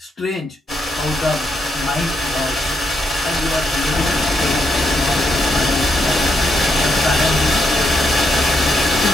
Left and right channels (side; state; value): both; normal; correlation 0.79